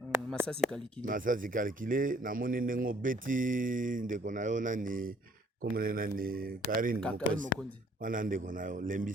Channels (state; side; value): normal; both; correlation 0.60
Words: Masasi Kalikile na moni nengo beti ndeko nayo nani comme nani Karine Mokondi wana ndeko nayo